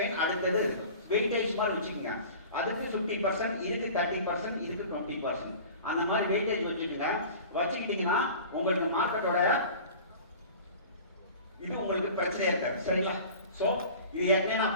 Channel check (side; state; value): both; inverted; correlation -0.40